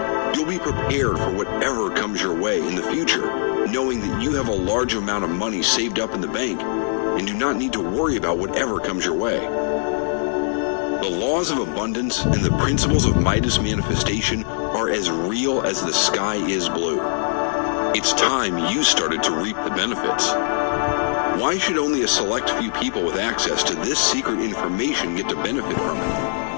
You'll be prepared for whatever comes your way in the future, knowing that you have a large amount of money saved up in the bank and do not need to worry about whatever comes your way. The laws of abundance and the principles of Midas Manifestation are as real as the sky is blue. It's time you started to reap the benefits. Why should only a select few people with access to this secret information get to benefit from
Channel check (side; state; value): right; silent; 62 dB below the other